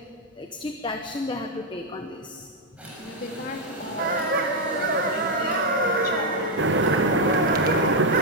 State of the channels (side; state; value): both; normal; correlation 0.01